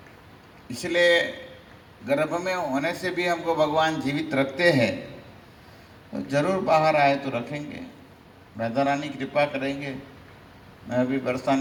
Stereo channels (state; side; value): identical; both; correlation 1.00